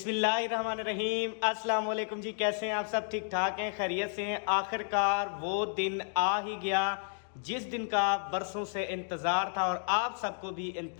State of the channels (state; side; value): silent; right; digital silence